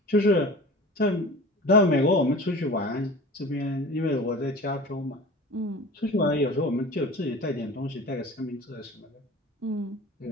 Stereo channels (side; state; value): both; normal; correlation 0.38